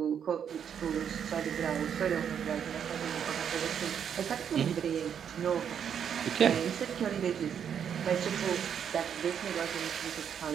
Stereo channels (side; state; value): left; quieter; 8.1 dB